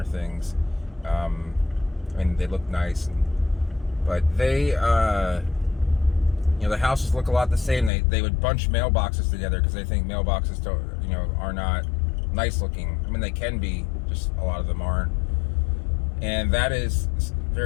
things. I mean, they look nice, but they, the houses look a lot the same. They would bunch mailboxes together because they think mailboxes are not nice looking. I mean, they can be, just a lot of them aren't. And that is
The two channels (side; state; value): right; drops out; at 7.9 s